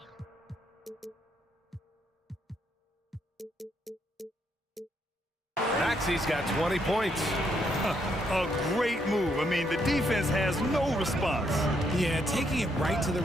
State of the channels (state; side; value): normal; both; correlation 0.75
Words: Maxi's got 20 points. A great move. I mean, the defense has no response. Yeah, taking it right to the